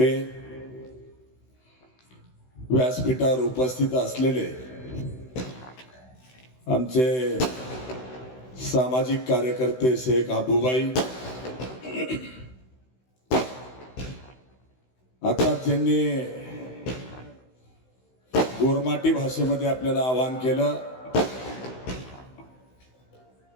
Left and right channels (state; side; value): late; right; 16 ms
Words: व्यासपीठावर उपस्थित असलेले आमचे सामाजिक कार्यकर्ते शेख आबूबाई, आता ज्यांनी गोरमाटी भाषेमध्ये आपल्याला आवाहन केलं